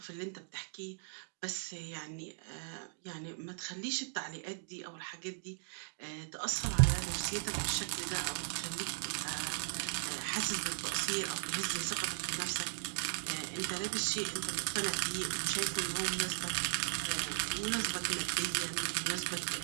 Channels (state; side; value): silent; left; digital silence